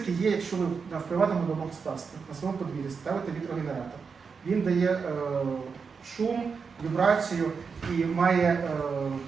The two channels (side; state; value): left; quieter; 5.5 dB